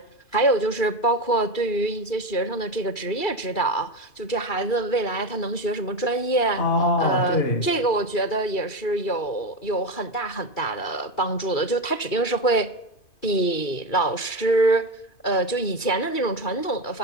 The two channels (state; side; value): late; right; 2.3 ms